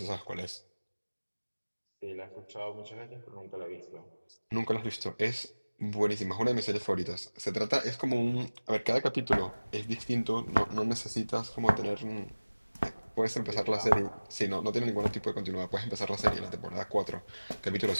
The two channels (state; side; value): inverted; both; correlation -1.00